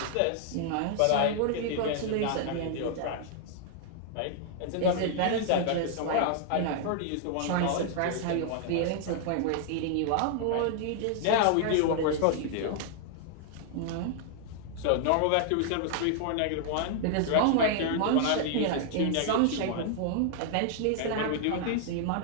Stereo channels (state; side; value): different; both; correlation -0.01